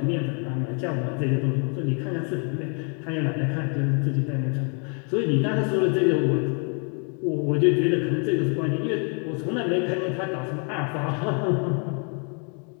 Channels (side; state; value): right; quieter; 39.9 dB